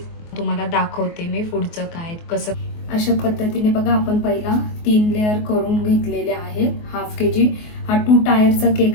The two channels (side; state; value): right; late; 24 ms